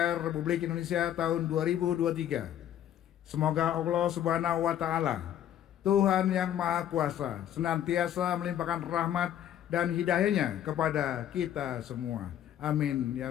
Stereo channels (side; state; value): right; quieter; 10.9 dB